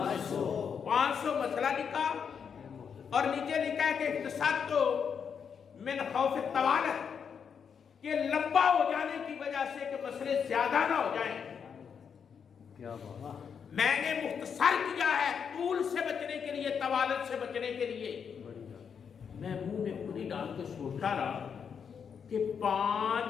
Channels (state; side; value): quieter; right; 6.9 dB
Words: 500 مسئلہ لکھا، اور نیچے لکھا ہے کہ اختصار تو من خوف طوالت، کہ لمبا ہو جانے کی وجہ سے کہ مسئلے زیادہ نہ ہو جائیں۔ کیا بات! میں نے مختصر کیا ہے طول سے بچنے کے لیے، طوالت سے بچنے کے لیے۔ میں منہ میں انگلی ڈال کے سوچا رہا کہ